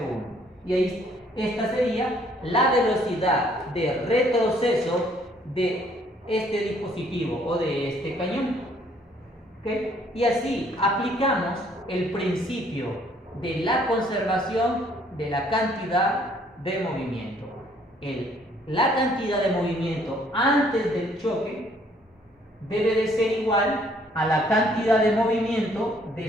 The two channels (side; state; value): both; normal; correlation 0.63